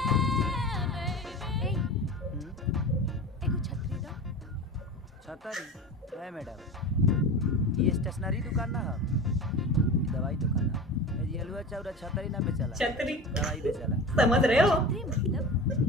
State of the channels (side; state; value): both; normal; correlation 0.32